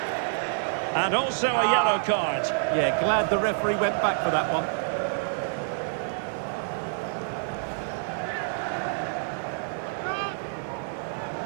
And also a yellow card. Yeah, glad the referee went back for that one.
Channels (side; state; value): left; silent; 60 dB below the other